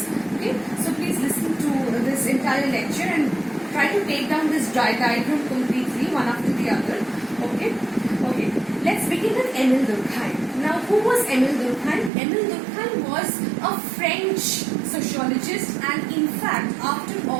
Okay, so please listen to this entire lecture and try to take down this diagram completely, one after the other. Okay, let's begin with EMILE DURKHEIM. Now, who was EMILE DURKHEIM? EMILE DURKHEIM was a French sociologist, and in fact, after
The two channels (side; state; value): left; drops out; at 12.1 s